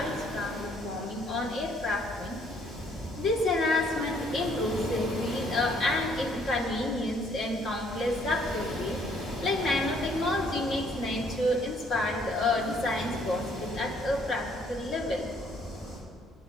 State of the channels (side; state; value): both; normal; correlation 0.64